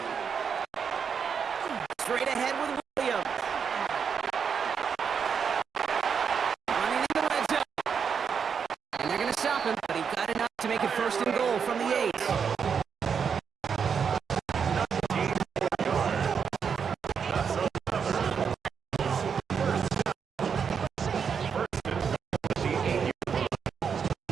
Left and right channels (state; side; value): quieter; left; 6.7 dB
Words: Straight ahead with Williams. Running in the red zone. And they're going to stop him, but he got enough to make it 1st and goal from the 8.